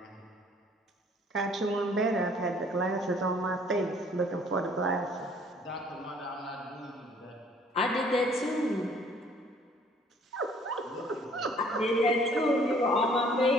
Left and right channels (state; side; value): normal; both; correlation 0.58